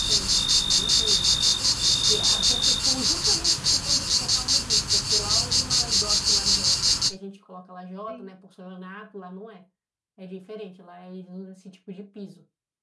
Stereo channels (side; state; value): both; identical; correlation 1.00